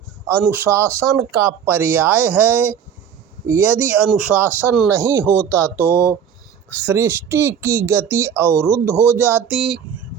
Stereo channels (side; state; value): left; quieter; 8.1 dB